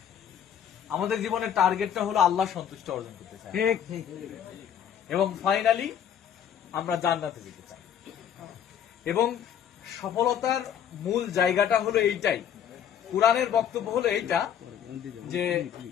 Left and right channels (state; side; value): quieter; right; 9.1 dB